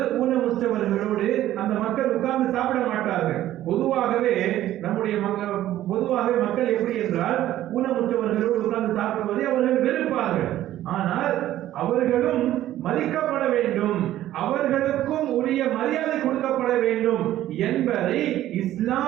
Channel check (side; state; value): left; quieter; 13.5 dB